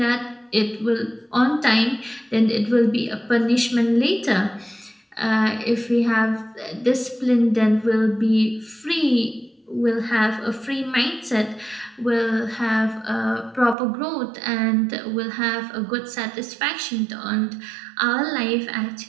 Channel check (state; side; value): drops out; left; at 13.8 s